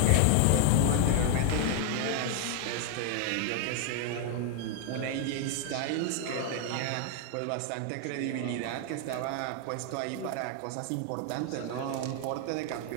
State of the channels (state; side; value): different; both; correlation 0.00